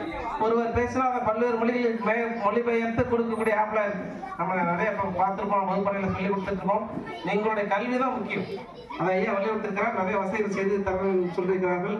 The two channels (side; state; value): both; identical; correlation 1.00